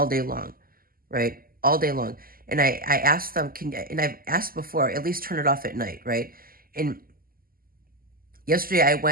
day long, right? All day long. And I asked them, and I've asked before, at least turn it off at night, right? And yesterday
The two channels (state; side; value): late; left; 0.42 ms